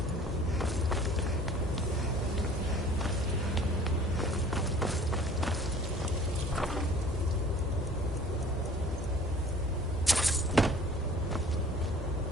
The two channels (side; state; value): both; normal; correlation 0.49